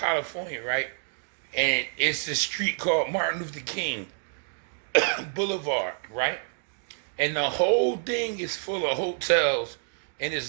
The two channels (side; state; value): left; silent; 59 dB below the other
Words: right? And it's a street called Martin Luther King Boulevard, right? And the whole thing is full of hotels, and